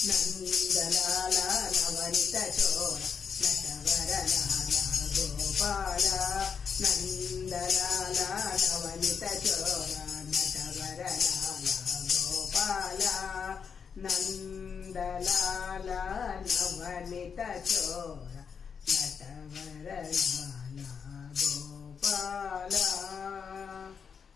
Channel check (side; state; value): right; quieter; 6.5 dB